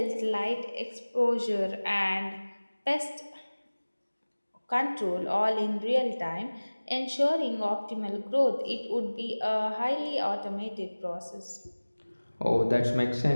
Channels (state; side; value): inverted; both; correlation -1.00